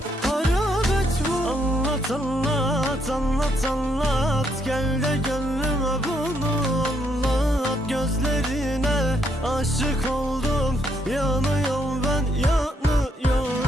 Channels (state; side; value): normal; both; correlation 0.73